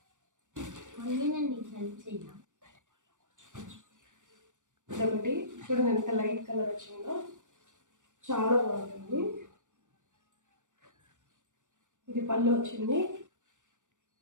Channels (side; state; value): left; late; 0.86 ms